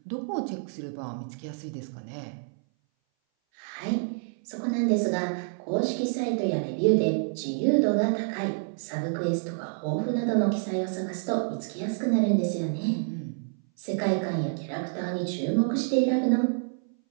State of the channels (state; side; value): silent; left; 58 dB below the other